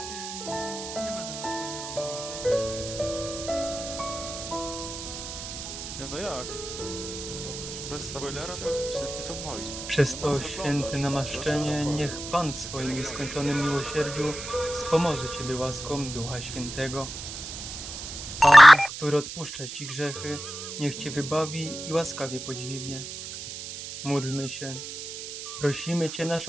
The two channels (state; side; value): noise; right; hiss, 9 dB below the sound